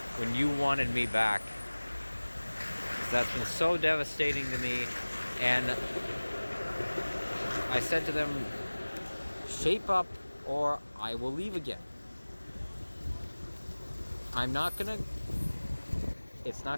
when you wanted me back. 'Cause that's been so devastating to me. And I said to them, shape up or I will leave again. It's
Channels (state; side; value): inverted; both; correlation -1.00